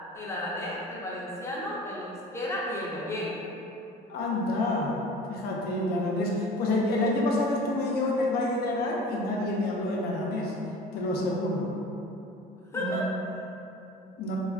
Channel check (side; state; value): both; normal; correlation 0.41